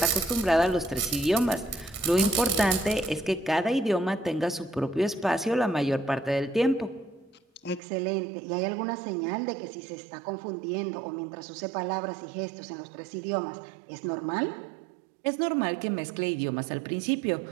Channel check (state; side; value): drops out; left; at 7.8 s